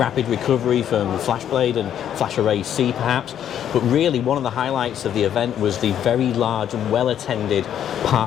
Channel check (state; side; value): quieter; right; 9.9 dB